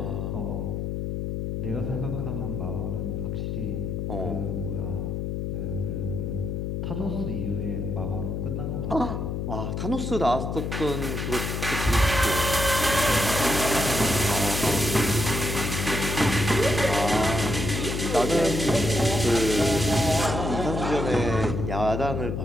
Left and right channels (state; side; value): noise; left; hum, 2 dB below the sound